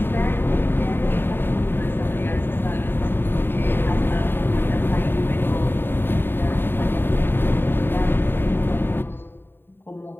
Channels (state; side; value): late; right; 0.10 ms